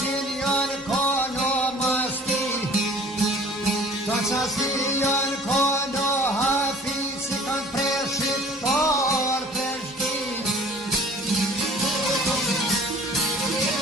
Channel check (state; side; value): normal; both; correlation 0.49